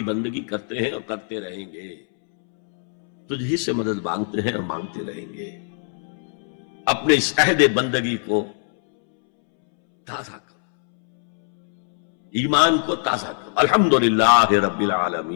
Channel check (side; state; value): right; silent; 64 dB below the other